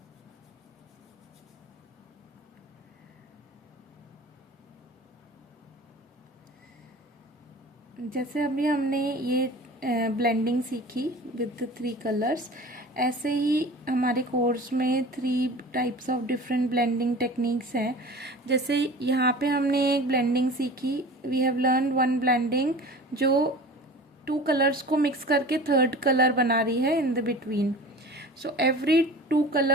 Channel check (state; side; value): normal; both; correlation 0.39